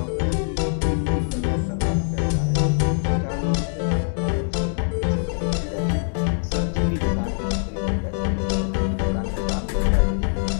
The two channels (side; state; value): right; silent; digital silence